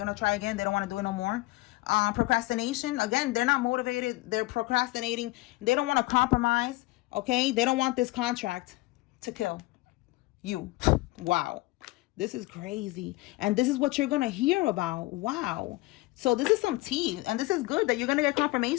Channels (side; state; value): right; quieter; 21.1 dB